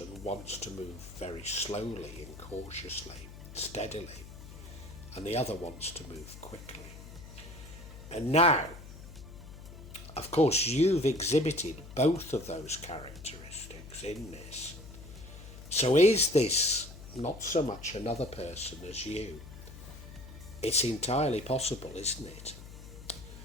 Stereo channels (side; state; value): left; noise; hum, 14 dB below the sound